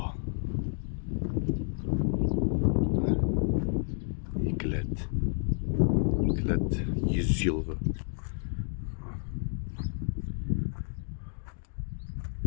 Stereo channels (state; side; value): silent; right; 56 dB below the other